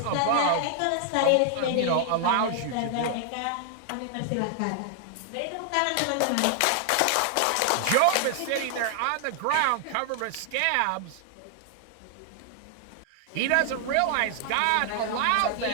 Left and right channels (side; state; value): both; different; correlation 0.00